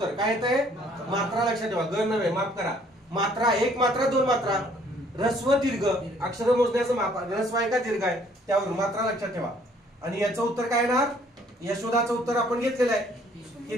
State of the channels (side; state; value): both; normal; correlation 0.61